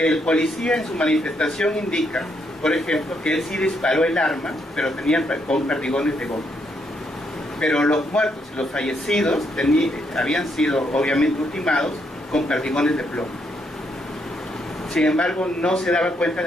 policía en su manifestación indica, por ejemplo, que él sí disparó el arma, pero tenía con perdigones de goma. Pero los muertos y los fallecidos habían sido obviamente ultimados con perdigones de plomo. Sin embargo, no se daba cuenta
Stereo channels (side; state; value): both; normal; correlation 0.76